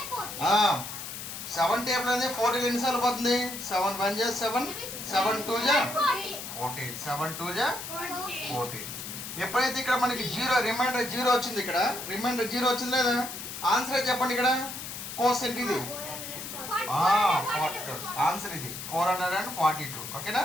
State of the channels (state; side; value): noise; left; hiss, 8 dB below the sound